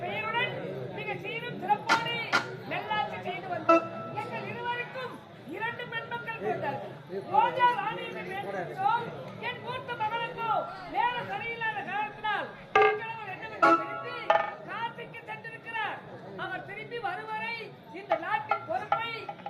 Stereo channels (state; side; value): identical; both; correlation 1.00